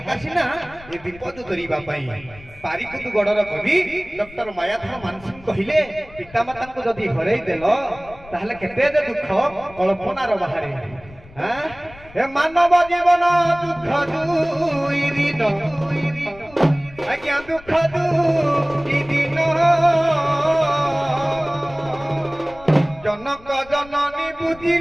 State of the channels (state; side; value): noise; left; rumble, 21 dB below the sound